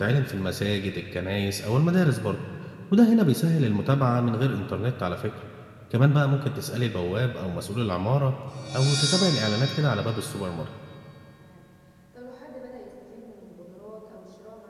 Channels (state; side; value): identical; both; correlation 1.00